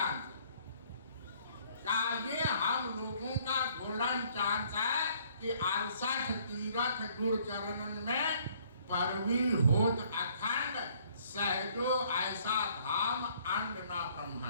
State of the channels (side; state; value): both; inverted; correlation -0.61